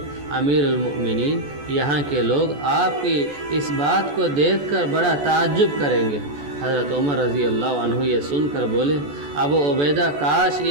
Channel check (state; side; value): late; left; 14 ms